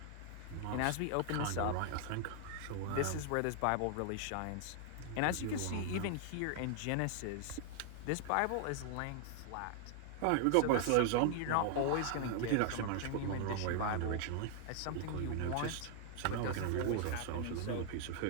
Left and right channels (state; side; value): different; both; correlation 0.00